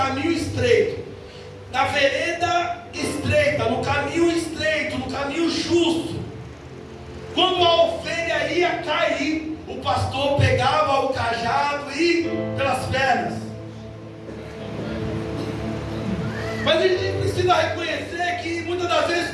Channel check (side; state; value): both; identical; correlation 1.00